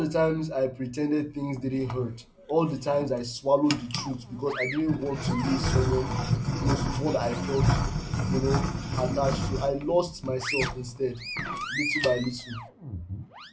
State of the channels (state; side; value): identical; both; correlation 1.00